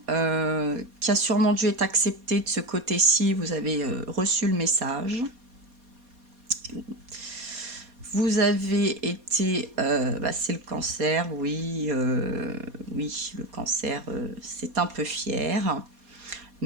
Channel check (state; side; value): late; left; 4.2 ms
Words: qui a sûrement dû être acceptée de ce côté-ci. Vous avez reçu le message. Vous avez été... c'est le cancer, oui. Oui, le cancer, c'est un peu fier.